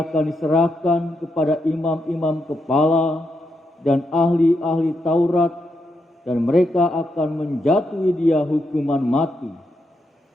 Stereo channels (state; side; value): normal; both; correlation 0.82